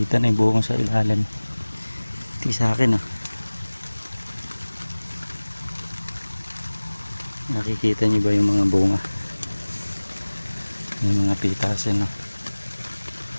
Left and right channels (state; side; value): inverted; both; correlation -1.00